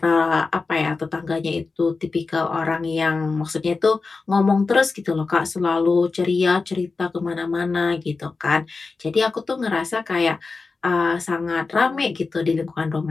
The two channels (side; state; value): right; quieter; 4.1 dB